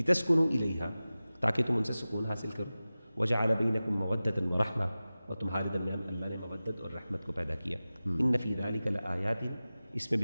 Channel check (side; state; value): both; inverted; correlation -0.97